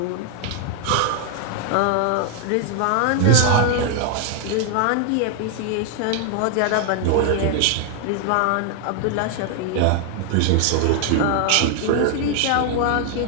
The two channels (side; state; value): both; different; correlation 0.00